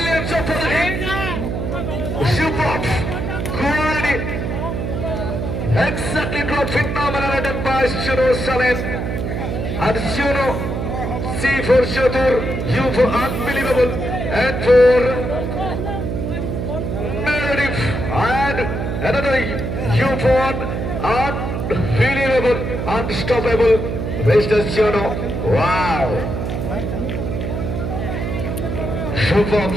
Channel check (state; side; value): noise; right; hum, 2 dB below the sound